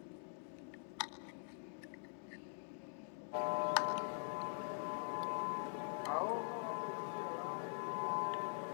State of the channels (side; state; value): right; silent; digital silence